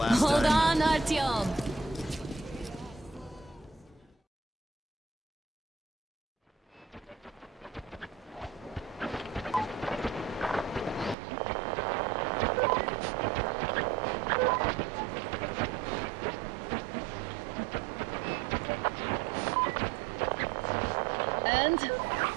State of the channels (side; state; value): left; drops out; at 11.2 s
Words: Hold time. on, Artyom. And?